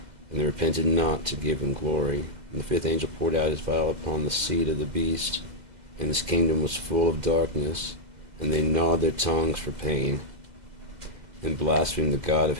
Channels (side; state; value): left; late; 2.0 ms